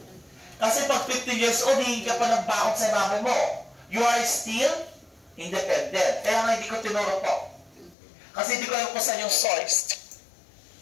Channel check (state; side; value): drops out; right; at 8.0 s